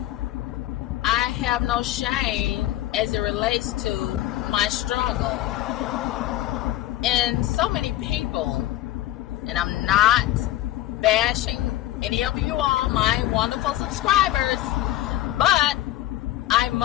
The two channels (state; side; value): quieter; right; 14.7 dB